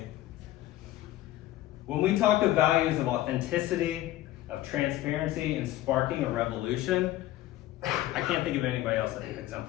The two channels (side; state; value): right; quieter; 14.9 dB